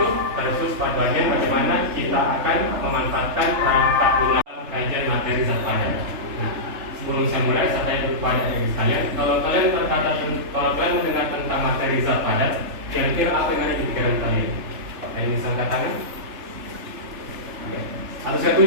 Terkhusus pada bagian bagaimana kita akan memanfaatkan perangkat lunak kajian materi zat padat. Nah, sebelum saya mulai, saya tanya kepada adik sekalian, kalau kalian mendengar tentang materi zat padat, kira-kira apa yang ada di pikiran kalian? Ada yang bisa angkat tangan? Oke. Atau saya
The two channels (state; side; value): late; left; 3.4 ms